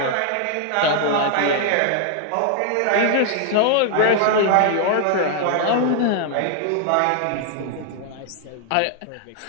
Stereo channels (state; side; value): different; both; correlation 0.00